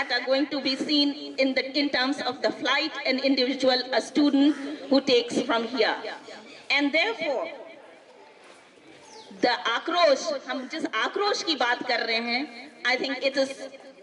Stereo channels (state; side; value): identical; both; correlation 1.00